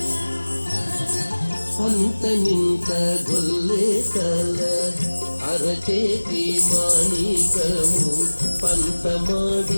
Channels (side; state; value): both; inverted; correlation -1.00